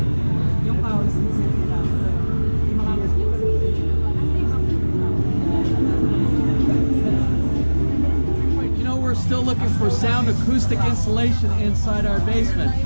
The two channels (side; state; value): both; inverted; correlation -1.00